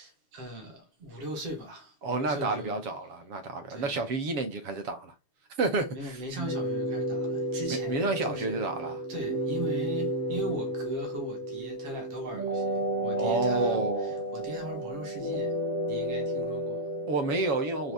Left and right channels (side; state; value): left; late; 7.1 ms